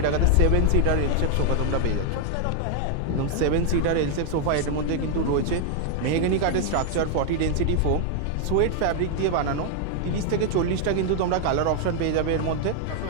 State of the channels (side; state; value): both; different; correlation 0.00